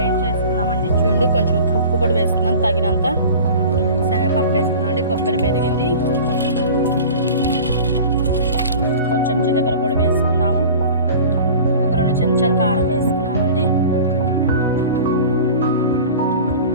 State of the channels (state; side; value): inverted; both; correlation -0.39